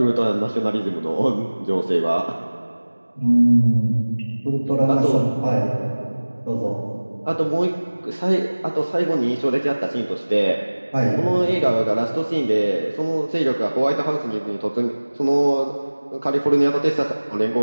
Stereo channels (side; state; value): both; inverted; correlation -1.00